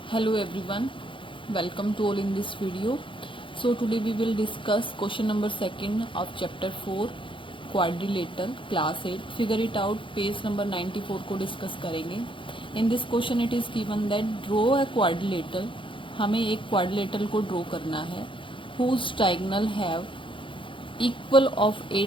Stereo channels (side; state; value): right; late; 0.25 ms